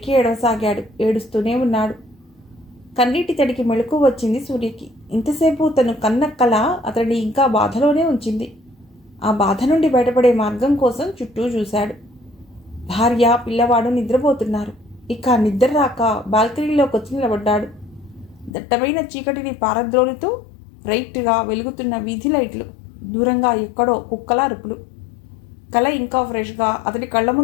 ఏడవసాగాడు. ఏడుస్తూనే ఉన్నాడు. కన్నీటి తడికి మెళుకు వచ్చింది సూర్యకి. ఇంతసేపు తను కన్న కల అతడిని ఇంకా బాధలోనే ఉంచింది. ఆ బాధ నుండి బయటపడే మార్గం కోసం చుట్టూ చూశాడు. భార్య పిల్లవాడు నిద్రపోతున్నారు. ఇక నిద్ర రాక బాల్కనీలోకి వచ్చి నిలబడ్డాడు. దట్టమైన చీకటిని పారద్రోలుతూ బ్రైట్గా వెలుగుతున్న వీధి లైట్లు, దూరంగా ఎక్కడో కుక్కల అరుపులు. కల ఇంకా ఫ్రెష్గా అతడి కళ్ళ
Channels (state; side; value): drops out; right; at 18.5 s